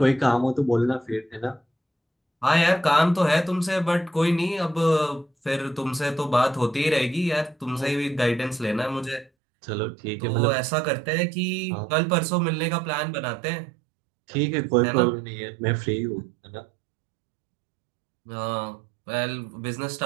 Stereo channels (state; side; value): drops out; left; at 9.3 s